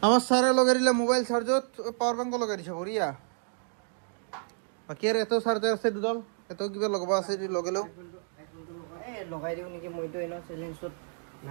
আমার সারে লগাইলে মোবাইল চার্জত পাওয়ার ব্যাংক লগাই দিছে বড়িয়া বাকি আর এত চার্জার আছে দুডাল এত কিবা লগাবা আছে লগালেও এই লগাই দিও নেকি মইতো এনা চ্যালেঞ্জত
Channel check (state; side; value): silent; left; 58 dB below the other